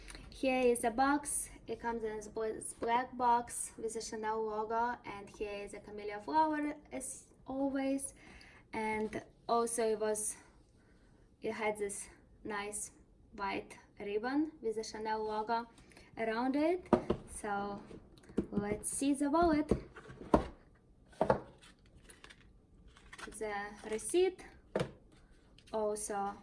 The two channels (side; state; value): both; identical; correlation 1.00